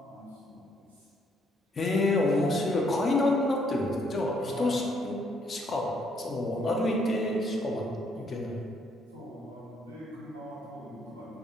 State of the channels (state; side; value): normal; both; correlation 0.70